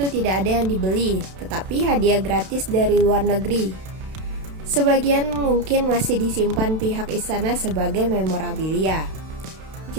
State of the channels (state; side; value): late; left; 32 ms